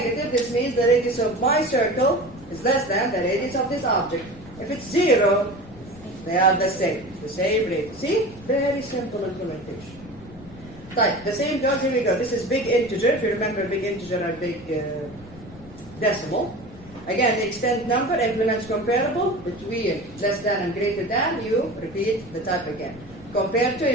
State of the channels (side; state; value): left; noise; rumble, 19 dB below the sound